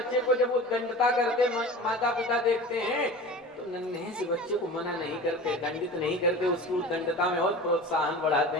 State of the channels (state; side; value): normal; both; correlation 0.36